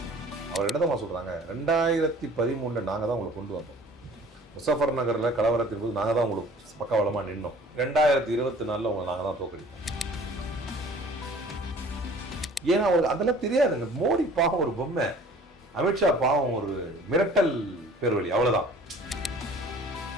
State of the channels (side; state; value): both; normal; correlation 0.49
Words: அவர் என்னதான் சொல்றாங்க, 2013 நாங்கள் தான் உங்களை கொண்டு வந்தோம். முசஃபர் நகரில் கலவரத்தின் போது நாங்கள் தான் உங்களுக்கு பக்கவலமாக நின்னோம். 2024 உங்களை நாங்கள் தான் தோக்கடிப்போம். ஏன்னா அவருக்கு அதெல்லாம் தெரியாதுங்க. மோடி பாவம் ஒரு பொம்மை, அமித்ஷா பாவம் ஒரு மிரட்டல் பேர்வழி, அவ்வளவுதான்.